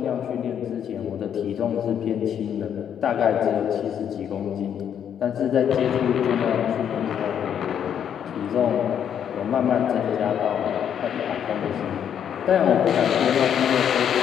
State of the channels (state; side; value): quieter; right; 8.9 dB